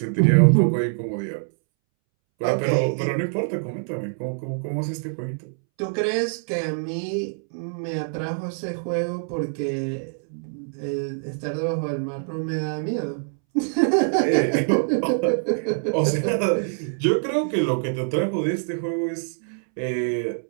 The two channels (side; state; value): left; silent; 62 dB below the other